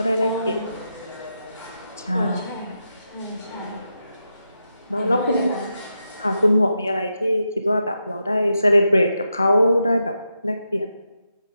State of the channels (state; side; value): inverted; both; correlation -0.86